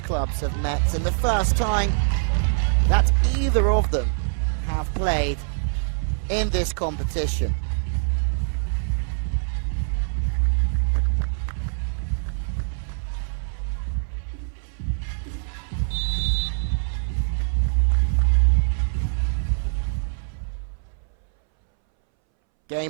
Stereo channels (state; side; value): silent; left; 63 dB below the other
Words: clubs have met, and the first time that either of them have played in this competition.